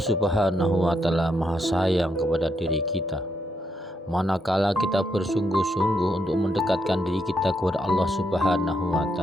Subhanahu wa taala Maha sayang kepada diri kita. Manakala kita bersungguh-sungguh untuk mendekatkan diri kita kepada Allah Subhanahu wa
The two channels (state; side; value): normal; both; correlation 0.79